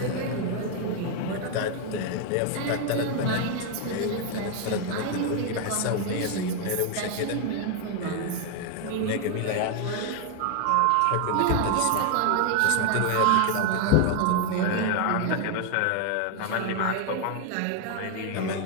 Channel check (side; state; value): both; different; correlation 0.00